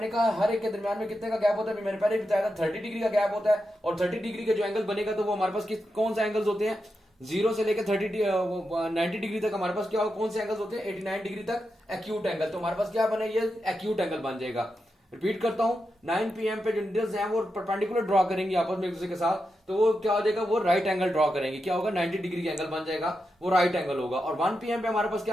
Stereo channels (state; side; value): normal; both; correlation 0.88